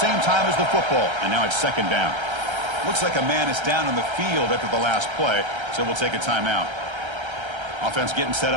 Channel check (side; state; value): left; late; 1.3 ms